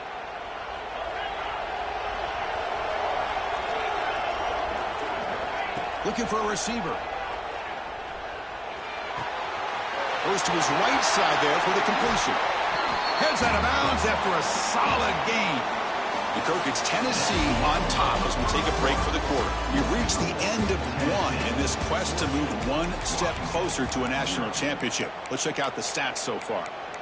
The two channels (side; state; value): both; identical; correlation 1.00